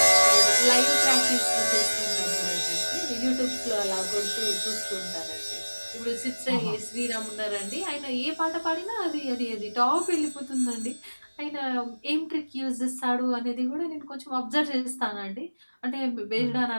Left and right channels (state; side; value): inverted; both; correlation -1.00